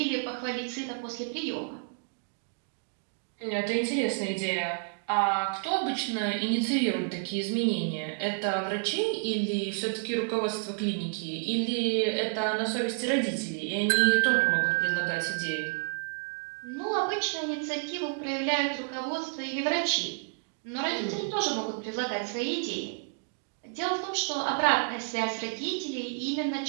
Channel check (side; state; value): left; silent; 58 dB below the other